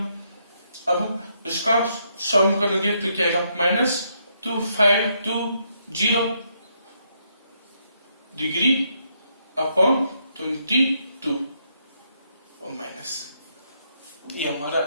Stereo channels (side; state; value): both; inverted; correlation -0.76